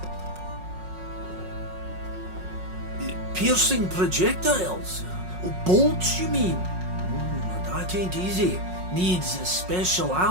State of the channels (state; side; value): late; left; 5.5 ms